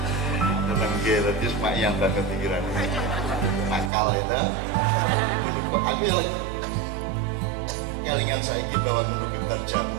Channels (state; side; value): drops out; left; at 3.9 s